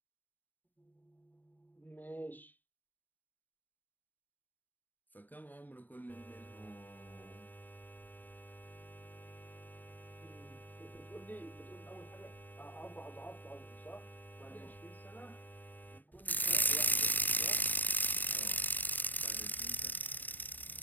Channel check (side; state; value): right; late; 0.087 ms